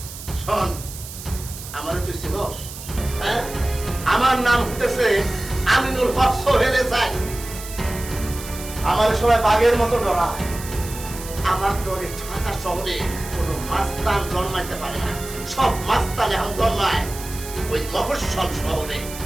শোন, আমারে তুই চিনস? হ্যাঁ, আমার নাম হতেছে আমিনুল হক সোহেল এসাই। আমার সবাই বাঘের মতো ডরায়, আমার ডরে ঢাকা শহরে কোনো মাস্তান জন্মাইতে পারে না, সব মাস্তান এখন জন্মায় ওই মফস্বল শহরে।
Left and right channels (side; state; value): right; noise; hiss, 12 dB below the sound